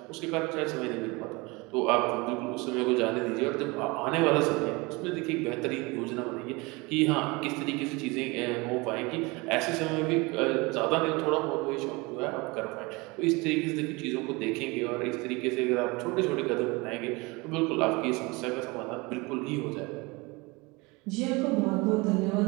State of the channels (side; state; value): left; quieter; 25.3 dB